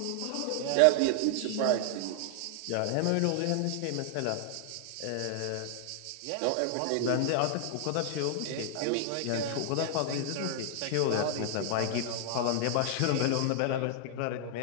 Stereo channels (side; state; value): both; different; correlation 0.00